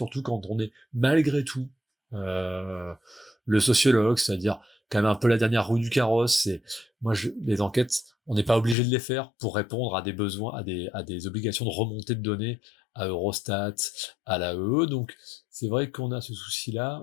quand on est malgré tout le sociologue, c'est-à-dire quand même un peu la dernière roue du carrosse. Les enquêtes, on n'est pas obligé de les faire pour répondre à des besoins, à des obligations de remontée de données à Eurostat, à l'AEE. Donc c'est vrai qu'on a ce souci-là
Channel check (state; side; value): drops out; right; at 8.8 s